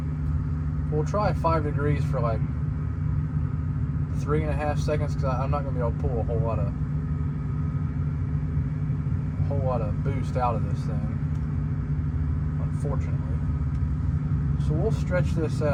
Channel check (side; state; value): both; identical; correlation 1.00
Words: We'll try 5 degrees for like 3.5 seconds because I'm not going to be able to pull a whole lot of boost out of this thing, unfortunately. So we'll stretch this